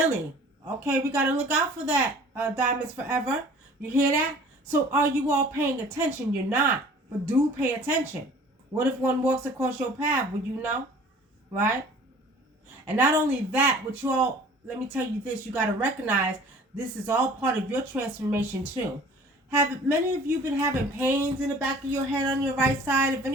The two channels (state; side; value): normal; both; correlation 0.48